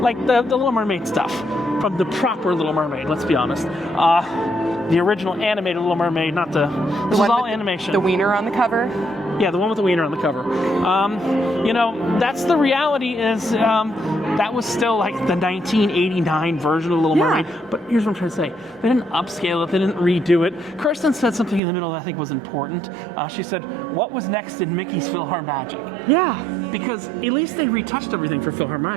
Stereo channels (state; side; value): drops out; left; at 21.6 s